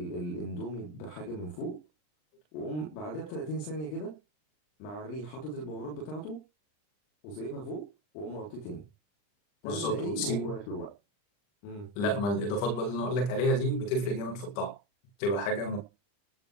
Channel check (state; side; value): late; right; 40 ms